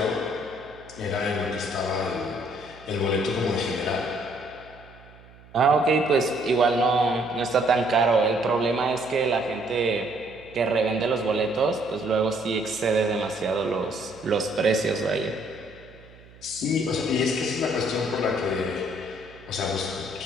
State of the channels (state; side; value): noise; right; hum, 23 dB below the sound